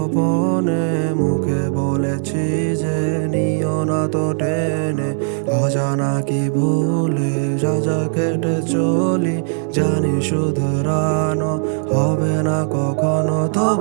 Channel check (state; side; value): silent; left; 67 dB below the other